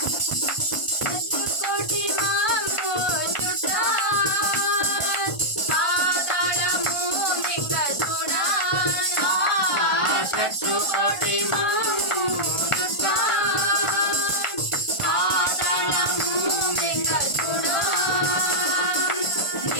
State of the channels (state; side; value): late; right; 1.4 ms